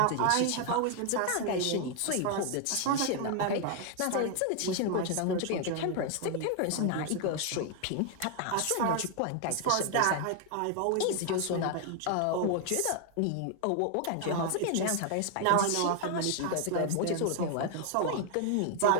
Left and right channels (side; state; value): both; different; correlation 0.00